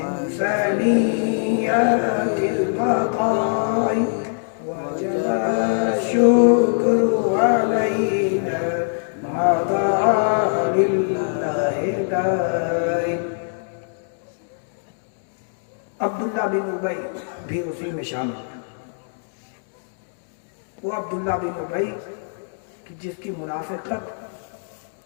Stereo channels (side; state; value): right; silent; digital silence